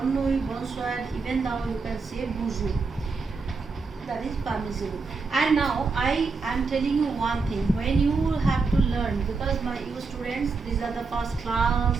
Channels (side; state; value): left; quieter; 4.4 dB